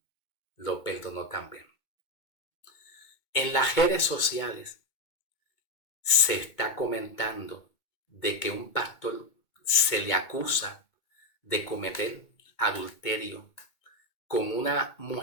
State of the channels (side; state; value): right; late; 2.2 ms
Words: Lo perdonó también. En las redes sociales se está comentando de que un pastor se le acusa de cometer adulterio con una